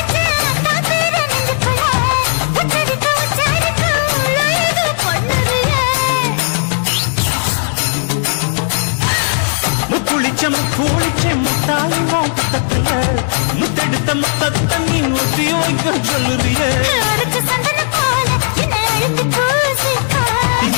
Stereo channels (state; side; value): silent; right; digital silence